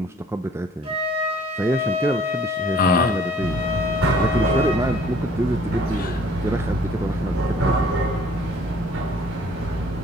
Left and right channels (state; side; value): normal; both; correlation 0.55